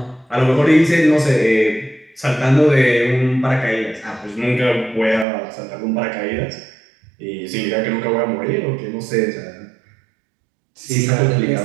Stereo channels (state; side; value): drops out; left; at 5.2 s